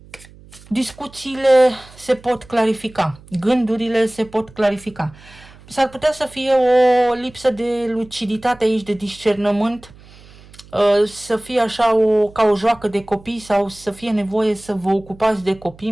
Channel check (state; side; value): noise; right; hum, 23 dB below the sound